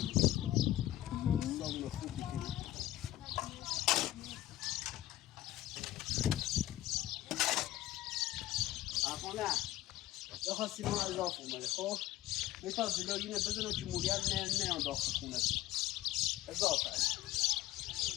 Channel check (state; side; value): quieter; right; 14.9 dB